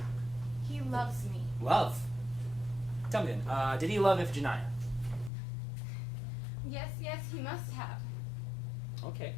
He loves me. Love? Tell me then, did he love Iphigenia? Yes, he must have. Okay.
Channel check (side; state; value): right; drops out; at 5.3 s